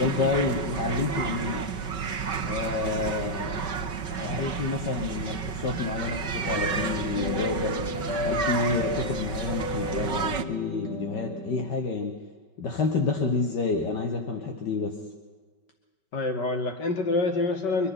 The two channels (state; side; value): late; right; 5.3 ms